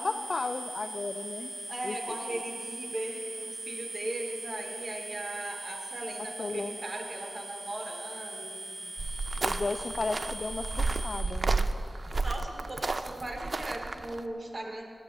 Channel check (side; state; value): both; normal; correlation 0.94